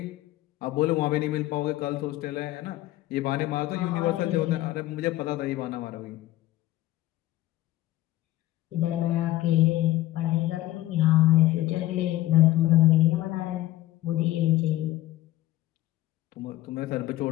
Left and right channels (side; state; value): right; quieter; 15.7 dB